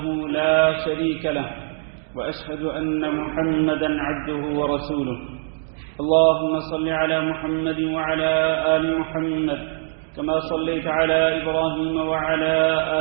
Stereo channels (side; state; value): left; silent; digital silence